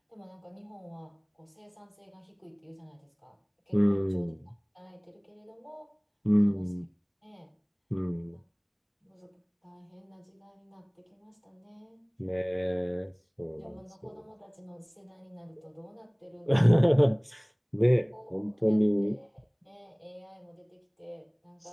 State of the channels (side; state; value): both; identical; correlation 1.00